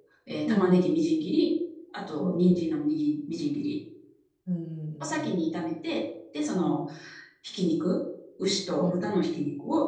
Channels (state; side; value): identical; both; correlation 1.00